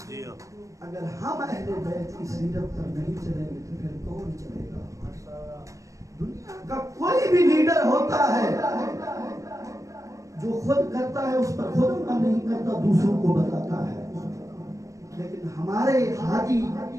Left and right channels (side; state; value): left; late; 0.16 ms